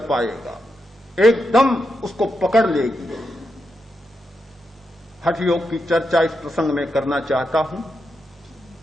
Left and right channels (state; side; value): normal; both; correlation 0.85